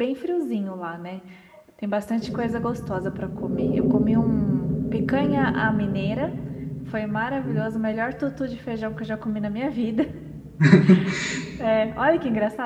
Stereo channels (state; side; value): identical; both; correlation 1.00